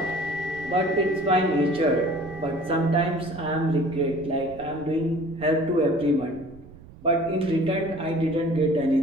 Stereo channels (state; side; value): noise; right; rumble, 20 dB below the sound